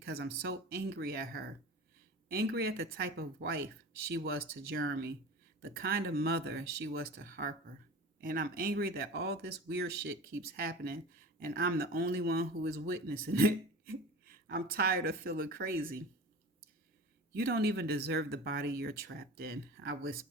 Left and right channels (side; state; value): both; normal; correlation 0.35